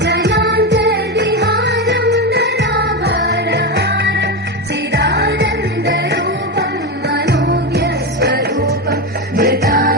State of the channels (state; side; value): normal; both; correlation 0.15